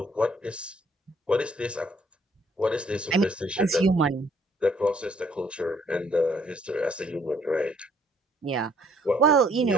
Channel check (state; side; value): normal; both; correlation 0.64